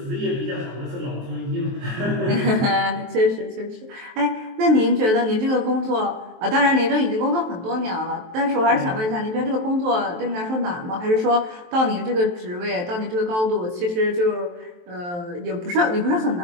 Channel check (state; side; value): late; left; 23 ms